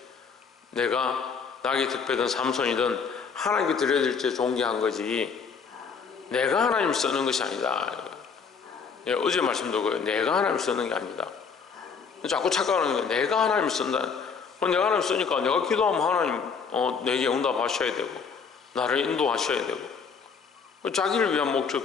내가 낙이 특별든 삼손이든 하나님께 들려질 때 존귀한 거지 내가 하나님 쓰는 것이 아니다. 어제 말씀도 그래요. 내가 하나님 쓰는 게 아니다. 자꾸 착각하는 게 내가 하나님 쓴다. 내가 하나님 쓰니까 내가 기도하면 하나님 내게 응답하셔야 되고 나를 인도하셔야 되고 자기를 위한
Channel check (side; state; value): right; quieter; 5.8 dB